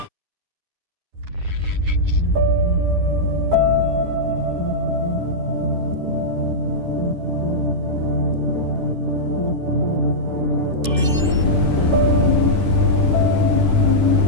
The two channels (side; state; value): left; late; 10 ms